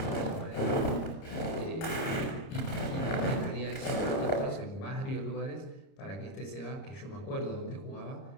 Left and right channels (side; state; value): right; late; 30 ms